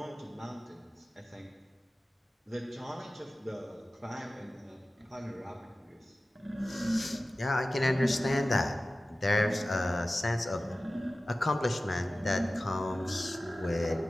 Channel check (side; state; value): both; normal; correlation 0.96